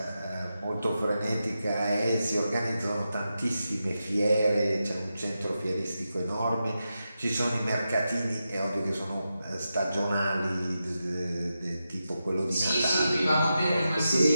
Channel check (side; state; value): both; inverted; correlation -0.89